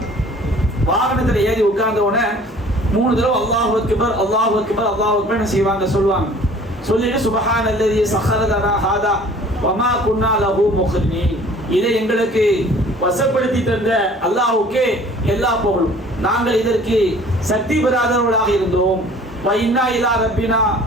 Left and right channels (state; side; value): normal; both; correlation 0.50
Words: வாகனத்துல ஏறி உட்கார்ந்த உடனே 3 தடவை அல்லாஹு அக்பர் அல்லாஹு அக்பர் அல்லாஹு அக்பர் செய்வாங்க, சொல்லுவாங்க. சொல்லிட்டு சுப்ஹானல்லதி ஸஹர லனா ஹாதா வமா குன்னா லஹு முக்ரினீன், இதை எங்களுக்கு வசப்படுத்தி தந்த அல்லாஹ்வுக்கே எல்லா புகழும், நாங்கள் இதற்கு சக்தி பெறாதவர்களாக இருந்தோம். வ இன்னா இலா ரப்பினா